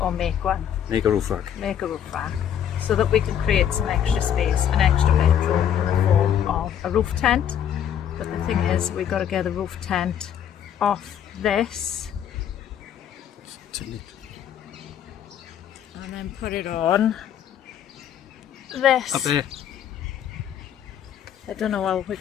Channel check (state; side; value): quieter; right; 9.5 dB